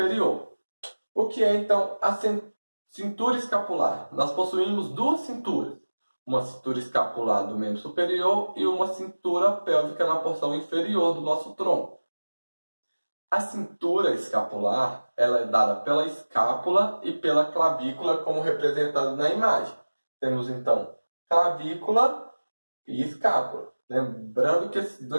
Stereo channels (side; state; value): both; inverted; correlation -1.00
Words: O que é, então, a cintura escapular? Nós possuímos 2 cinturas. Uma cintura escapular do membro superior e uma cintura pélvica na porção inferior do nosso tronco. A cintura escapular ela é dada pela escápula e pela clavícula, como representado na imagem. Temos, então, clavícula e escápula. Lembrando que esses